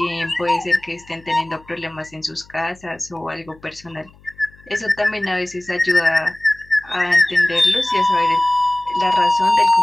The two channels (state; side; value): noise; left; hum, 26 dB below the sound